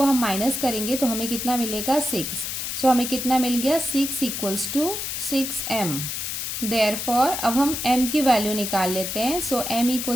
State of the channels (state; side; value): noise; left; hiss, 4 dB below the sound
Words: हम माइनस करेंगे तो हमें कितना मिलेगा, 6। सो हमें कितना मिल गया, 6 इक्वल्स टू 6m। देयरफॉर अब हम m की वैल्यू निकाल लेते हैं। सो m